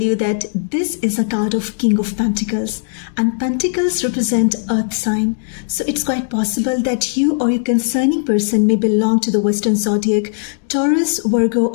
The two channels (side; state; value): right; silent; digital silence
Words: that this is a card of King of Pentacles, and Pentacles represent Earth sign. So it's quite possible that you or your concerning person may belong to the Western Zodiac, Taurus, Virgo